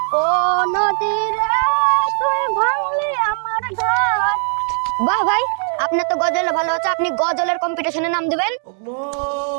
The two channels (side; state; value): left; silent; digital silence